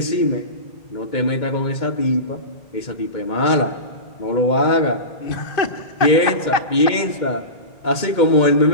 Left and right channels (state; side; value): late; right; 2.2 ms